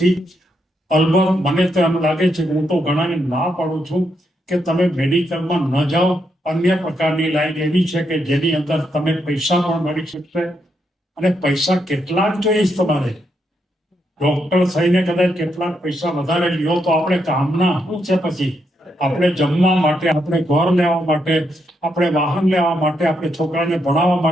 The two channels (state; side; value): normal; both; correlation 0.79